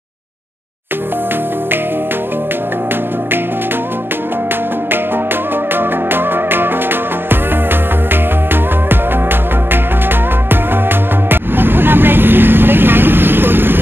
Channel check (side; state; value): left; late; 0.10 ms